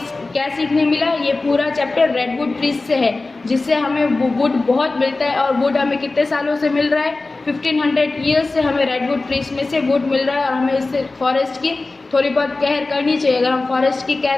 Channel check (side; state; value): right; quieter; 3.4 dB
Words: क्या सीखने मिला, ये पूरा चैप्टर रेडवुड ट्रीज से है, जिससे हमें वुड बहुत मिलता है। और वुड हमें कितने सालों से मिल रहा है, 1500 ईयर्स से हमें रेडवुड ट्रीज में से वुड मिल रहा है, और हमें इससे फॉरेस्ट की थोड़ी बहुत केयर करनी चाहिए। अगर हम फॉरेस्ट की